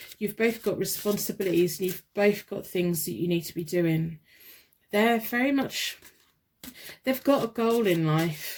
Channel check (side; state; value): both; identical; correlation 1.00